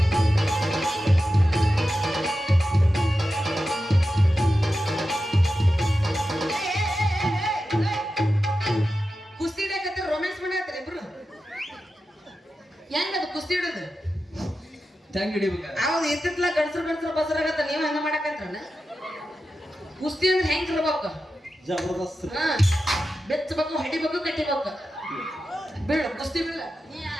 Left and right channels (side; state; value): both; normal; correlation 0.91